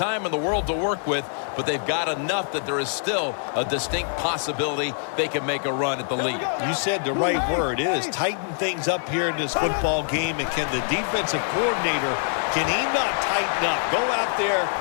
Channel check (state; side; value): silent; right; digital silence